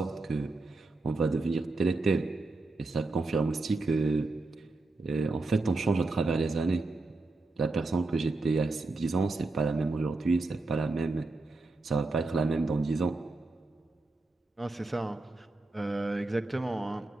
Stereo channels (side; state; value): left; quieter; 3.3 dB